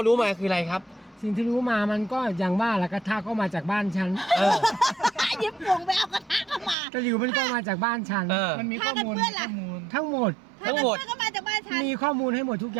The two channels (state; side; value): drops out; left; at 6.8 s